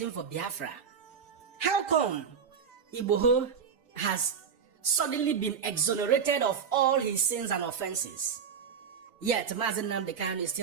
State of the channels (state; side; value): quieter; left; 6.8 dB